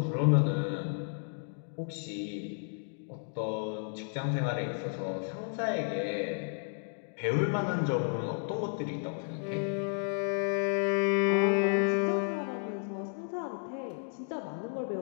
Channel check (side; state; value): right; silent; 56 dB below the other